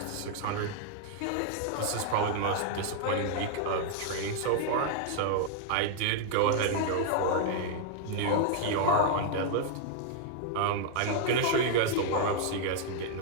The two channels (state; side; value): different; both; correlation 0.00